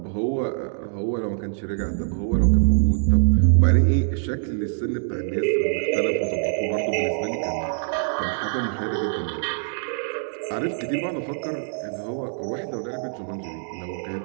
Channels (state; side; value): silent; left; digital silence